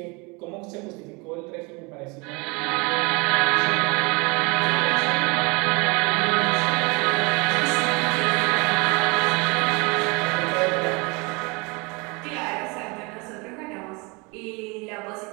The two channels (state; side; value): quieter; left; 28.5 dB